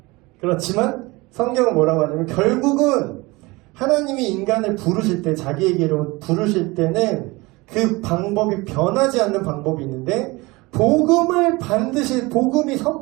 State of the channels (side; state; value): left; quieter; 23.1 dB